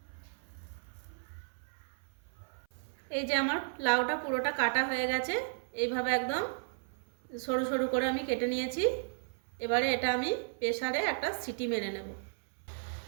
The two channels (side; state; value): left; silent; 55 dB below the other